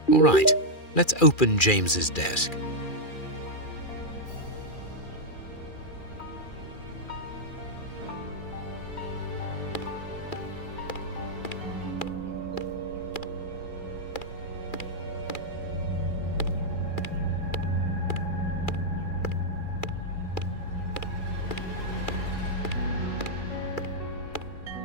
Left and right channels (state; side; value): late; right; 2.4 ms